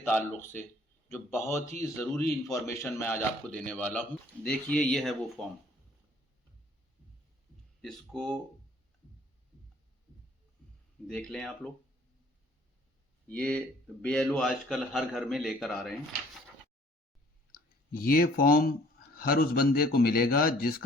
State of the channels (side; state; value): both; normal; correlation 0.57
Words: से, जो बहुत ही ज़रूरी इन्फॉर्मेशन मैं आज आपको देने वाला हूँ। देखिए, ये है वो फॉर्म। इसको देख लें आप लोग। ये BLO आजकल हर घर में लेकर आ रहे हैं। ये फॉर्म हर उस बंदे को मिलेगा